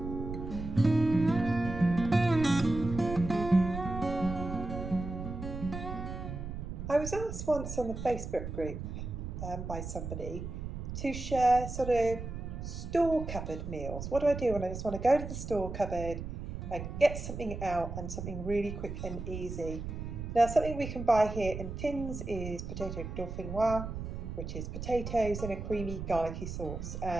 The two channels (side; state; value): right; noise; rumble, 7 dB below the sound